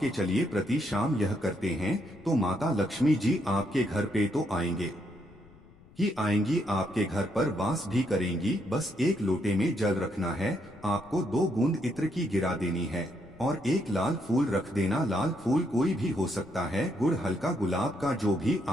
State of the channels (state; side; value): noise; left; rumble, 24 dB below the sound